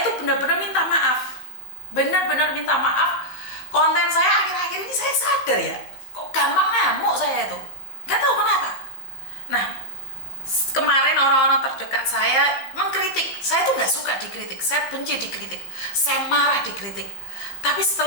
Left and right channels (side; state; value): right; late; 15 ms